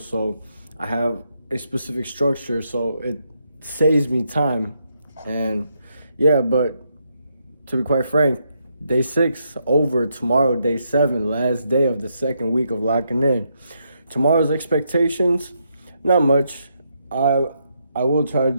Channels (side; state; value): both; inverted; correlation -0.79